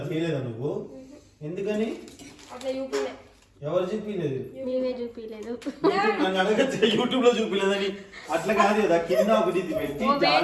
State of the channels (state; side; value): identical; both; correlation 1.00